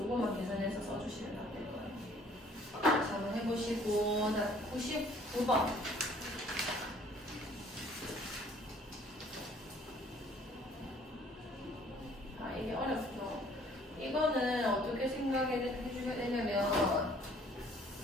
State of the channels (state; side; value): normal; both; correlation 0.58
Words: 계산해서 써주시면 될 거예요. 자, 한번 해보시고, 자, 99번. 이게 어렵죠. 이거는 어떻게 생각해주셔야 되냐면,